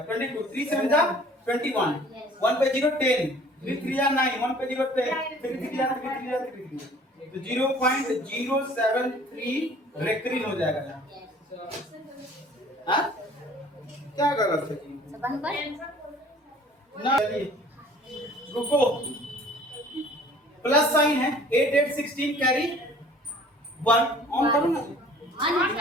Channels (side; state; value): both; normal; correlation 0.51